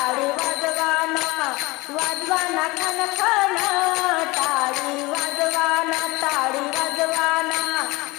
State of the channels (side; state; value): right; quieter; 22.8 dB